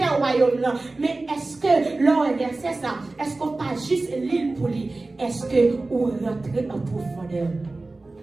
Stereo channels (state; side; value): quieter; left; 3.2 dB